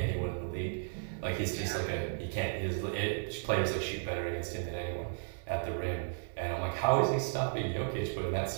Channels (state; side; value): silent; left; digital silence